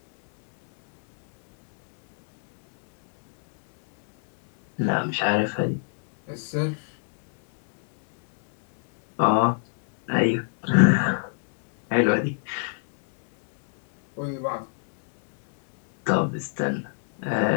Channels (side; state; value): right; silent; digital silence